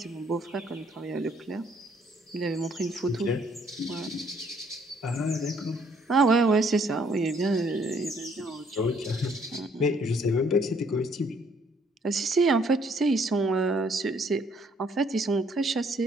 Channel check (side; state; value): both; normal; correlation 0.65